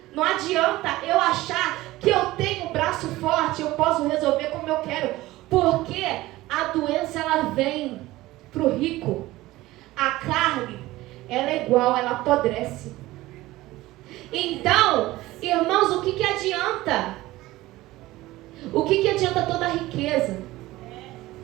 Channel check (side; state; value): left; quieter; 17.8 dB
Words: Não adianta eu achar que eu tenho um braço forte, eu posso resolver como eu quero. Porque a doença, ela vem para o rico. A carne, ela é igual, ela apodrece. Então, irmãos, o que adianta? O que adianta toda a riqueza?